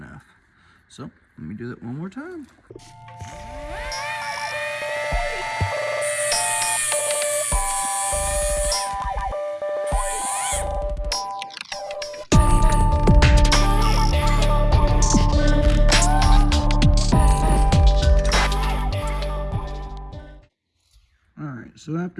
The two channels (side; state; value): both; identical; correlation 1.00